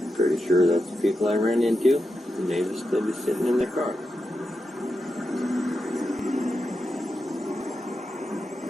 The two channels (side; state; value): both; normal; correlation 0.88